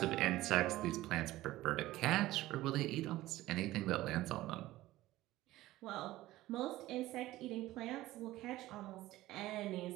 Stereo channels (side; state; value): left; quieter; 16.5 dB